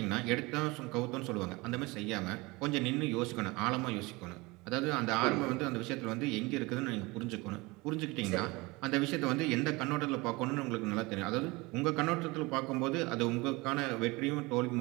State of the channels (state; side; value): quieter; left; 23.7 dB